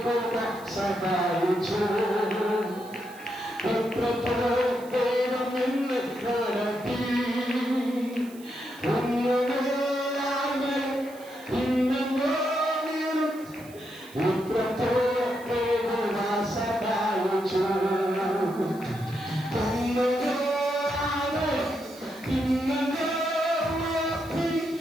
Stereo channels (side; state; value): right; noise; hiss, 22 dB below the sound